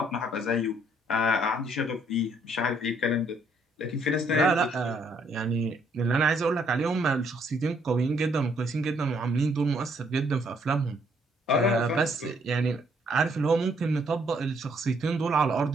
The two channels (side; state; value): both; normal; correlation 0.68